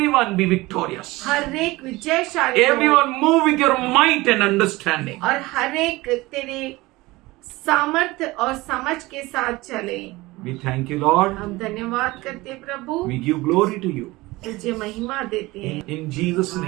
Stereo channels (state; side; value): quieter; left; 20.6 dB